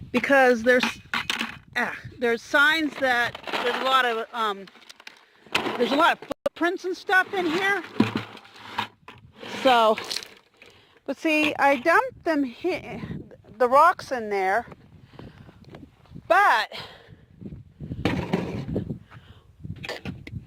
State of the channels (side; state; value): both; identical; correlation 1.00